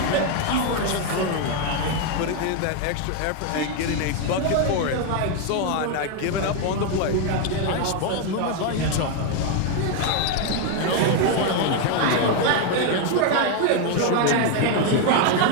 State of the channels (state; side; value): different; both; correlation 0.01